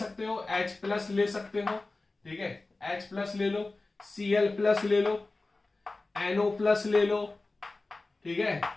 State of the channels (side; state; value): right; quieter; 3.3 dB